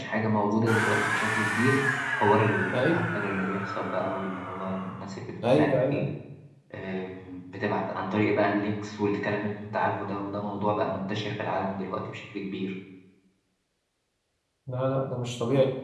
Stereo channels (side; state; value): both; identical; correlation 1.00